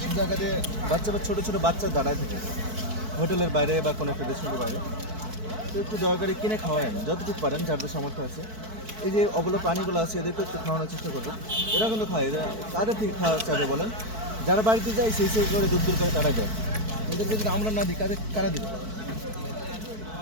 জায়গাতে ছোটো ছোটো বাচ্চা দাঁড়ায় থাকে হোটেলের বাইরে বা কোনো একটা রেস্টুরেন্টের বাইরে তো একটু দয়া করে কিনে খাওয়ায়েন যতটুকু পারেন যাদের সামর্থ্য আছে এই যে অবলা প্রাণীগুলো আছে এদেরকে একটু খাওয়ানোর চেষ্টা করবেন এরা কিন্তু খায় এরা কাদের থেকে খাওয়া চাবে বলেন যারা বাড়িতে যায় সেই করে দূর করে তারা দেয় এদেরকে যদি আমরা না দিই কারা দিবে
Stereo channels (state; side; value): late; left; 4.6 ms